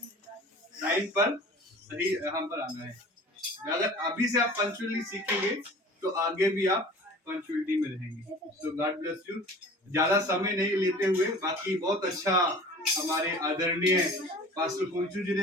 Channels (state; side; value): normal; both; correlation 0.43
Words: टाइम पर सही यहाँ पर आना है। अगर अभी से आप पंक्चुअली सीखेंगे तो आगे भी आप पंक्चुअलिटी में रहेंगे। तो गॉड ब्लेस यू। ज्यादा समय नहीं लेते हुए, बाकी बहुत अच्छा हमारे आदरणीय पास्टर कुंचू जी